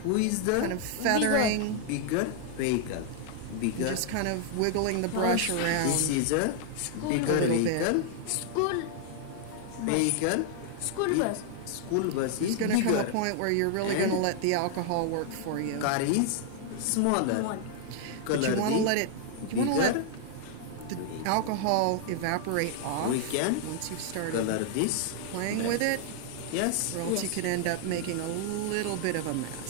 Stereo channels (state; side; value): different; both; correlation 0.00